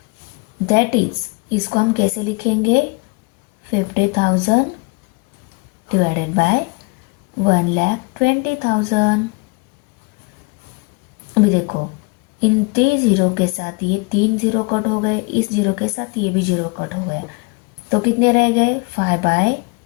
that is, इसको हम कैसे लिखेंगे, 50,000 डिवाइडेड बाय 1,20,000। अभी देखो इन 3 जीरो के साथ ये 3 जीरो कट हो गए, इस जीरो के साथ ये भी जीरो कट हो गया, तो कितने रह गए 5/12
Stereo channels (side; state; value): right; quieter; 28.3 dB